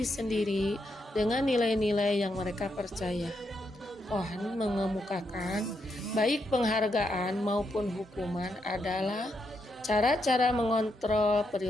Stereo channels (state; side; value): normal; both; correlation 0.81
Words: sendiri dengan nilai-nilai yang mereka percaya. Cohen mengemukakan baik penghargaan maupun hukuman adalah cara-cara mengontrol